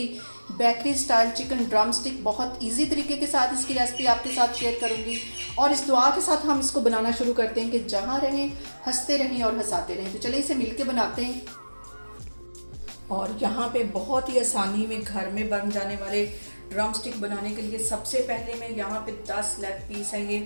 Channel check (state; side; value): inverted; both; correlation -1.00